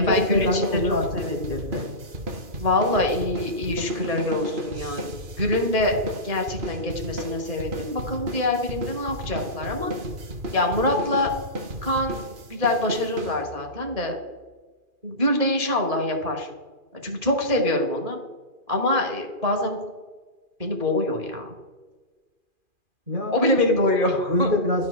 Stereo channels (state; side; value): late; left; 2.4 ms